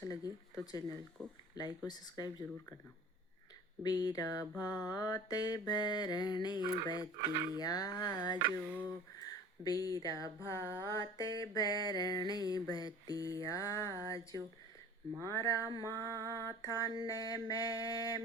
लगे तो चैनल को लाइक और सब्सक्राइब जरूर करना। बीरा भात भरने बतिया जो, बीरा भात भरने बतिया जो, मारा माथा ने मैं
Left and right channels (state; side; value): normal; both; correlation 0.43